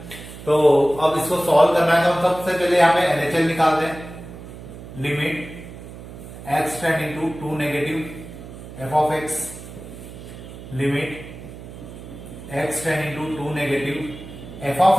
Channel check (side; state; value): right; noise; hum, 14 dB below the sound